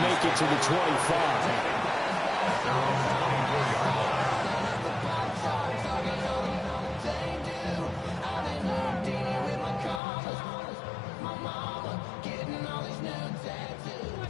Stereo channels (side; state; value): right; drops out; at 10.0 s